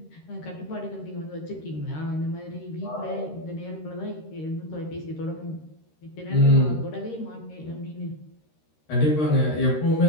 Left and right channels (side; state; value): right; late; 13 ms